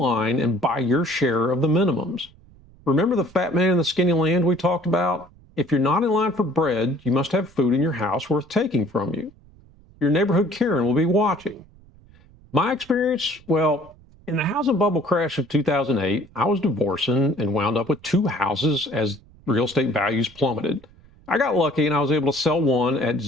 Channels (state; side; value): noise; right; rumble, 26 dB below the sound